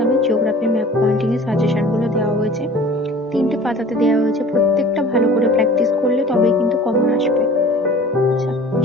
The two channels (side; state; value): both; normal; correlation 0.45